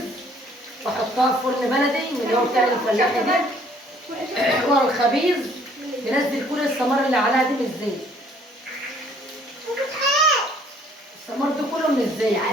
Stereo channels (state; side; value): normal; both; correlation 0.60